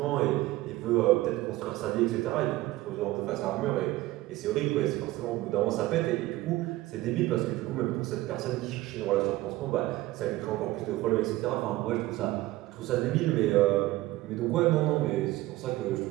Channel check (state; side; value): quieter; left; 17.7 dB